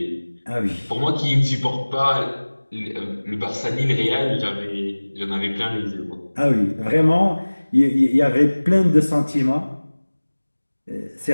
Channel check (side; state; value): both; inverted; correlation -1.00